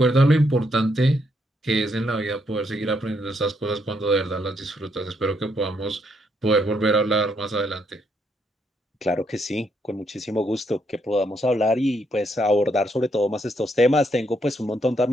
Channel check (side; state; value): both; normal; correlation 0.75